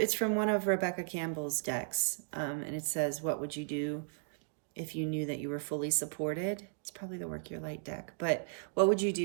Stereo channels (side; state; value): left; silent; digital silence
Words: from one of Rebecca Campbell's decks. And it says, what would you do if you knew that you were fully supported? It's probably the Work Your Light deck. But what would you